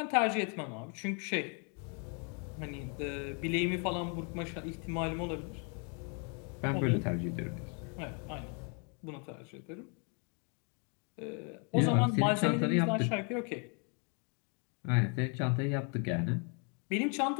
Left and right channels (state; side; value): quieter; right; 37.7 dB